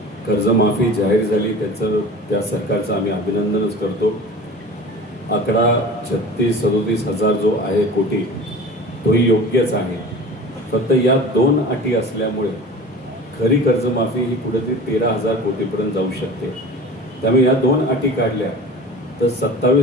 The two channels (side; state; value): both; normal; correlation 0.38